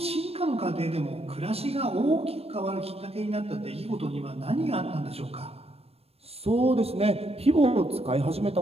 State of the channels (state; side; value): late; left; 0.29 ms